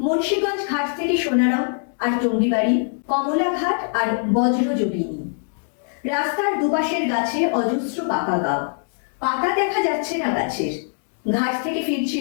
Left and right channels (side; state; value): right; silent; 64 dB below the other